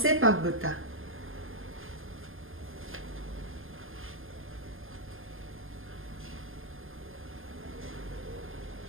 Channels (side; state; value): left; late; 0.60 ms